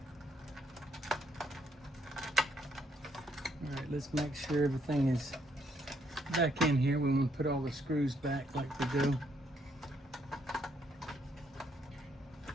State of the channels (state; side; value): normal; both; correlation 0.72